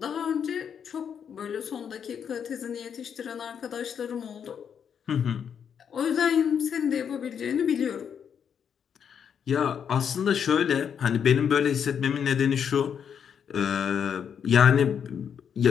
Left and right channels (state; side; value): quieter; right; 7.7 dB